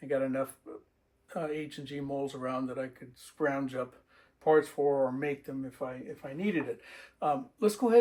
I got enough H&G molds around that I could scrounge up parts for or make them if I needed it. Let's go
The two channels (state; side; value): identical; both; correlation 1.00